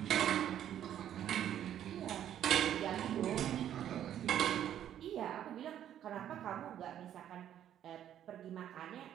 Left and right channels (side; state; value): left; quieter; 10.6 dB